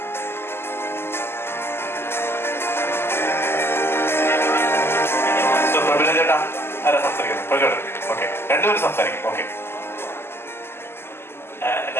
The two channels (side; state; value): right; late; 0.12 ms